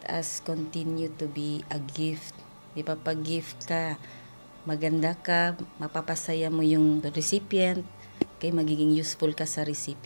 us continue to be a gift. Di ba, pag gift ka, maganda ka, mapapasaya mo yung recipient, kay magiging useful ka sa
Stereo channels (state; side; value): inverted; both; correlation -1.00